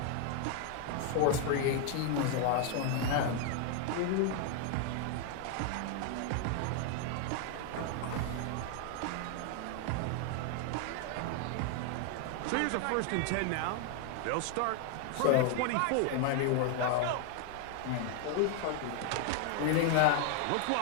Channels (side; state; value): both; different; correlation 0.00